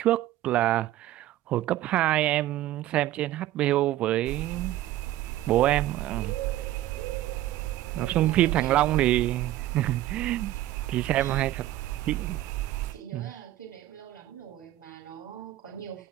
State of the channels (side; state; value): left; quieter; 14.4 dB